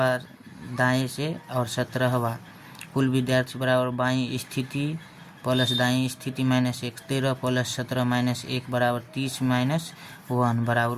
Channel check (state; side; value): identical; both; correlation 1.00